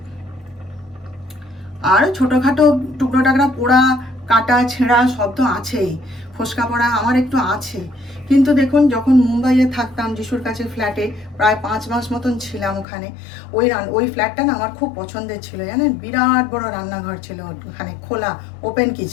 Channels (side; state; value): right; drops out; at 12.9 s